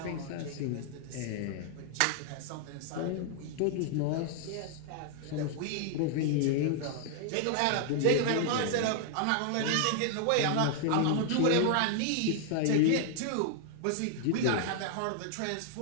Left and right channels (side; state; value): both; different; correlation 0.00